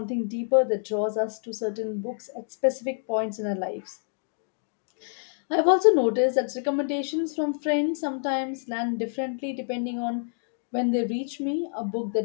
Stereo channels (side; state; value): right; silent; digital silence